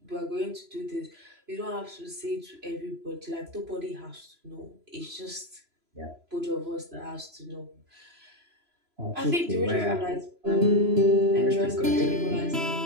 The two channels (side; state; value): left; late; 3.0 ms